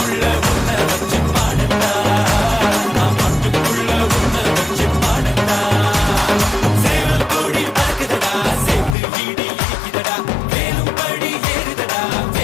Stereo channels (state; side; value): drops out; right; at 9.0 s